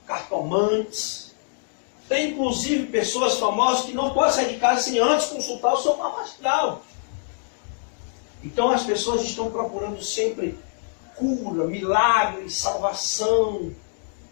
cartomantes. Tem inclusive pessoas famosas que não podem sair de casa sem antes consultar o seu mapa astral. Então as pessoas estão procurando sempre cura, milagres, salvação,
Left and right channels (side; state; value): right; silent; digital silence